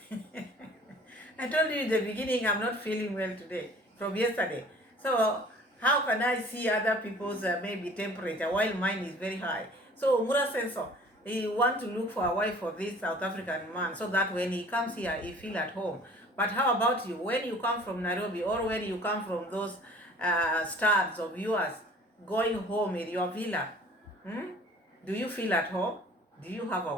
I told you in the beginning I'm not feeling well today from yesterday. So how can I see other people's maybe temperature while mine is very high? So Muraseno, he want to look for a wife for this South African man so that when he comes here, he feel at home. But how about you? When you come from Nairobi or when you come from those stars of yours going home in your villa, do you feel at home? Do you have a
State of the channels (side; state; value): both; normal; correlation 0.49